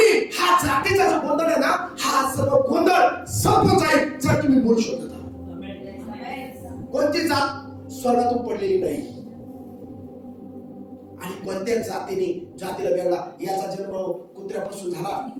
हा जातीचा जो गोंधळ आहे ना, हा सर्व गोंधळ संपून जाईल जर तुम्ही बोलू शकता. कोणती जात स्वर्गातून पडलेली नाही. आणि कोणत्या जातीला वेगळा, याचा जन्म कुत्र्यापासून झाला,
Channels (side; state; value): both; identical; correlation 1.00